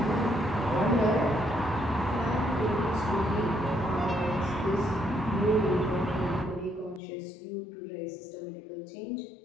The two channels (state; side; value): drops out; right; at 7.0 s